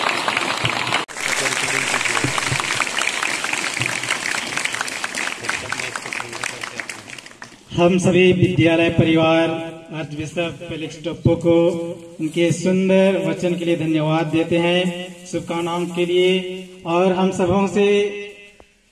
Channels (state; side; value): identical; both; correlation 1.00